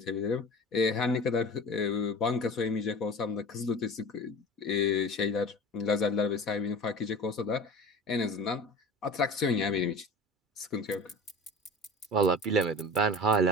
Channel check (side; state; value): both; normal; correlation 0.36